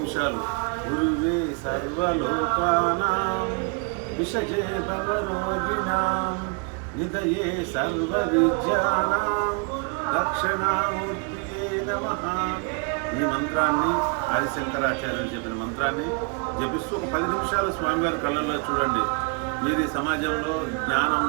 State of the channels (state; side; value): quieter; left; 34.9 dB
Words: గురువే సర్వలోకానాం విషజే భవరోగిణాం నిదయే సర్వ విద్యానాం దక్షిణామూర్తియే నమః ఈ మంత్రాన్ని ఆదిశంకరాచార్యులు చెప్పిన మంత్రాన్ని జపిస్తూ ఒక 10 నిమిషాలు స్వామివారి కళ్ళల్లో చూడండి. మీరు ఈ సమాజంలో